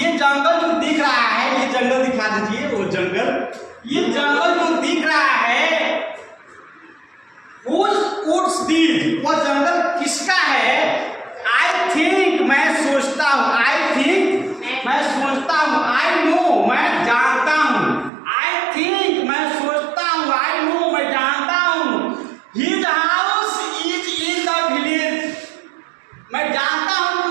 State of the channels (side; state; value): left; drops out; at 18.1 s